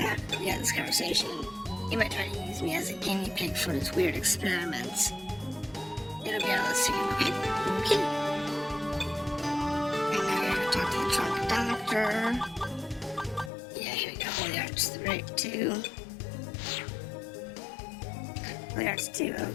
We had this conversation. He might try to use me as a guinea pig for his weird experiments. It'll be all soon, okay? Okay. And now we're gonna talk to the trunk doctor. Yeah, here we go. Holy Arts 2. Holy Arts 2,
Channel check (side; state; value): right; drops out; at 13.5 s